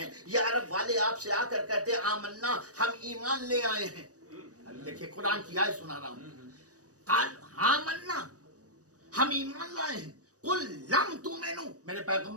یہ عرب والے آپ سے آ کر کہتے ہیں آمنا، ہم ایمان لے آئے ہیں. دیکھیے قرآن کی آیت سنا رہا ہوں. قال آمنا، ہم ایمان لائے ہیں. قل لم تؤمنوا، میرے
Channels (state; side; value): late; left; 0.66 ms